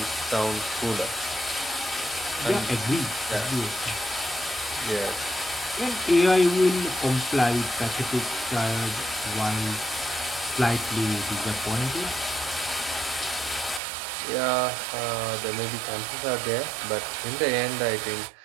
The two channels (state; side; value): drops out; left; at 13.8 s